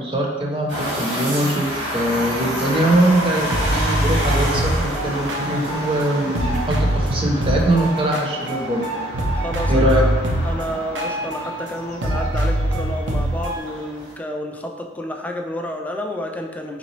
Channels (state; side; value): normal; both; correlation 0.63